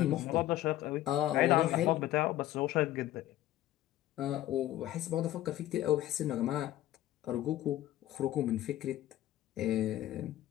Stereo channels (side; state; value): right; quieter; 14.1 dB